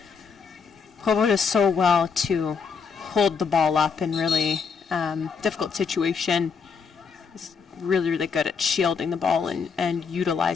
Provo does so well to hold the ball up in really difficult situation. Is really, really good at shielding the ball and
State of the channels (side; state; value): right; quieter; 5.8 dB